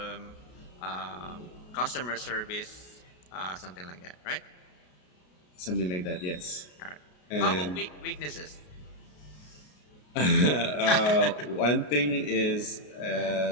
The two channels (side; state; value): right; late; 33 ms